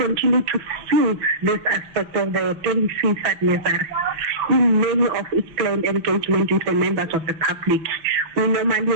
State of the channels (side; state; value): left; late; 6.1 ms